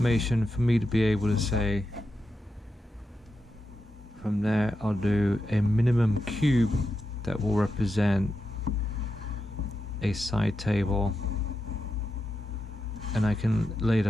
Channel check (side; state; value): both; normal; correlation 0.87